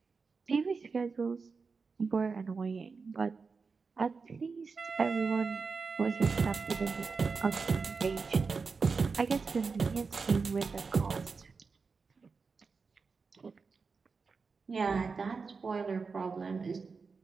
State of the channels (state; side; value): quieter; left; 4.8 dB